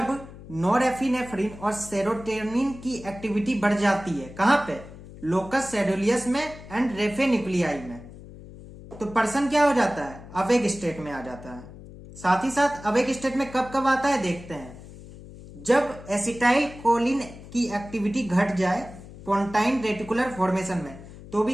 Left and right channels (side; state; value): left; noise; hum, 16 dB below the sound